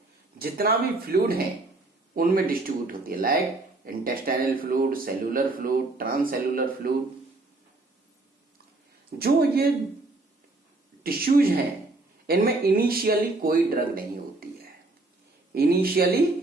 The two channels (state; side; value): quieter; left; 3.1 dB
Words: जितना भी फ्लूइड है उनमें डिस्ट्रीब्यूट होती है, like intestinal fluid, cellular fluid, transcellular fluid. जो ये टिश्यूज हैं इनमें इनिशियली कोई ड्रग नहीं होती है। इनिशियली